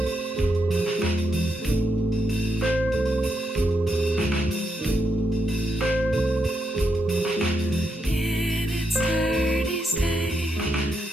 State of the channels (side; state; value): both; normal; correlation 0.81